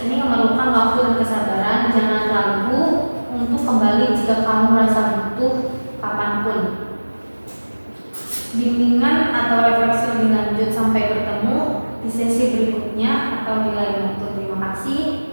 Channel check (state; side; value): inverted; both; correlation -1.00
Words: ini memerlukan waktu dan kesabaran. Jangan ragu untuk kembali jika kamu merasa butuh kapanpun. Bimbingan atau refleksi lebih lanjut sampai bertemu di sesi berikutnya atau di lain waktu. Terima kasih.